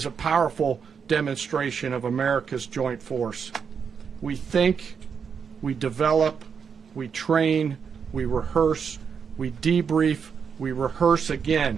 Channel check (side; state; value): left; quieter; 6.5 dB